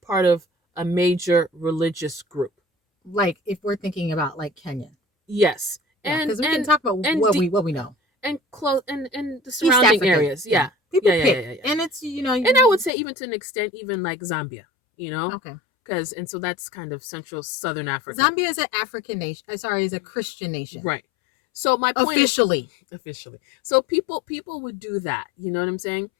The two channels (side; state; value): right; drops out; at 12.9 s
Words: of a major religious group. Like if we're thinking about like Kenya. Yes. Yeah, And because we can talk about what we know. And close and the East surrounding Africa. areas. Yeah. People yeah, pick. yeah, yeah. And it's, And I would say even to an extent, even like Zambia, Okay. And so that's kind of central southern Africa. Zambia is an African nation. Sorry, is a Christian nation. Right. So my point officially. So people would do that, you know what I'm saying?